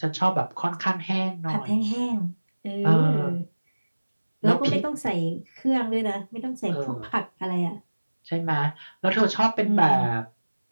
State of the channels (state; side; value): inverted; both; correlation -1.00